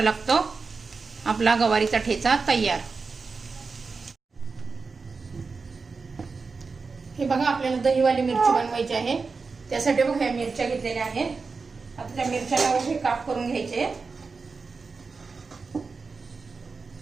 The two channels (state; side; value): quieter; left; 4.5 dB